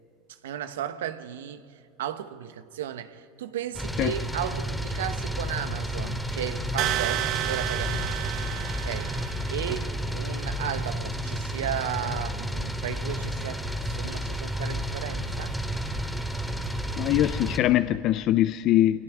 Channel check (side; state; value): both; normal; correlation 0.36